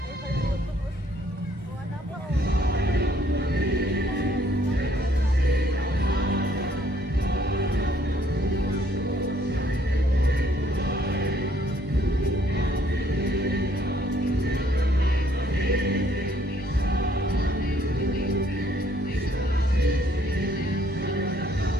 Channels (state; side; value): normal; both; correlation 0.64